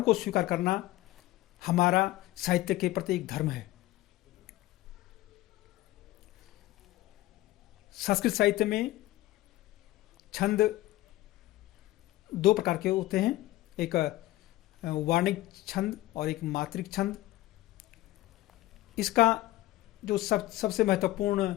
को स्वीकार करना हमारा साहित्य के प्रति एक धर्म है। संस्कृत साहित्य में छंद 2 प्रकार के होते हैं, एक वार्णिक छंद और एक मात्रिक छंद। इसका जो सबसे महत्वपूर्ण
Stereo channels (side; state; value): right; quieter; 16.9 dB